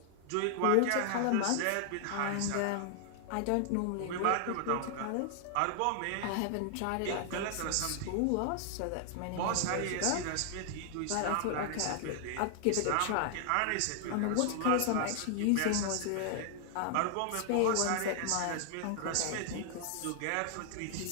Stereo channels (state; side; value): different; both; correlation 0.00